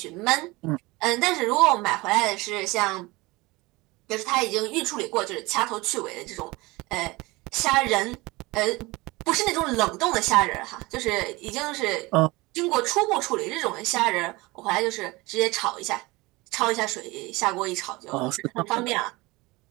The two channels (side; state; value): left; quieter; 22.5 dB